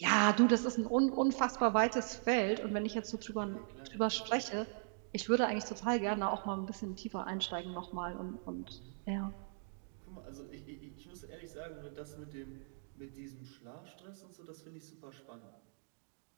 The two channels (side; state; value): left; silent; digital silence